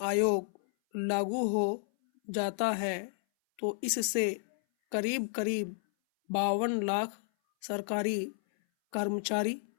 आयोग लागू हो जाता है तो इससे करीब 52 लाख सरकारी कर्मचारी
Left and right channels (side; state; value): right; silent; 57 dB below the other